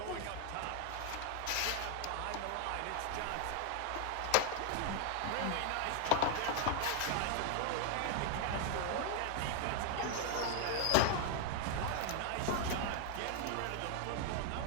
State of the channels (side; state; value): both; different; correlation 0.00